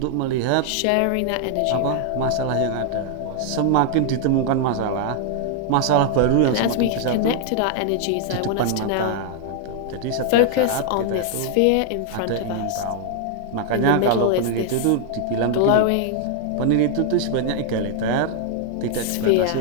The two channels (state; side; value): different; both; correlation 0.00